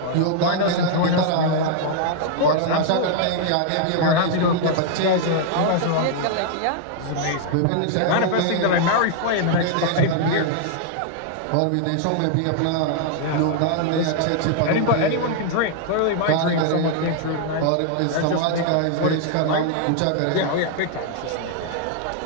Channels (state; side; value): different; both; correlation 0.00